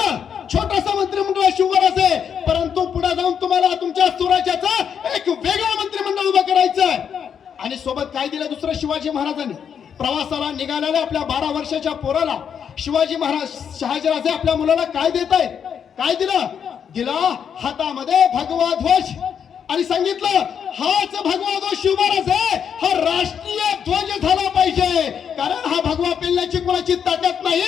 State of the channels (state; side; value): quieter; right; 7.7 dB